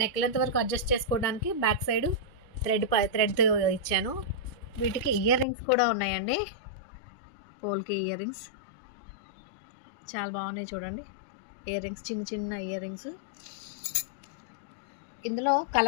నెక్ లెంత్ వరకు అడ్జస్ట్ చేసుకోవడానికి బ్యాక్ సైడ్ థ్రెడ్ ఇచ్చాను. వీటికి ఇయర్ రింగ్స్ కూడా ఉన్నాయండి. పోల్కి ఇయర్ రింగ్స్ చాలా బాగున్నాయి చూడండి. ఇయర్ రింగ్స్ చిన్న చిన్న ఇయర్ రింగ్స్. ఇందులో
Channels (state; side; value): drops out; right; at 5.5 s